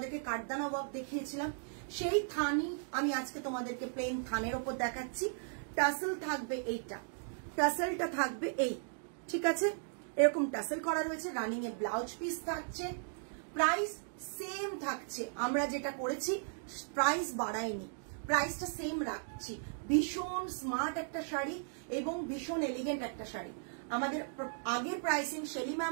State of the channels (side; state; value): left; silent; digital silence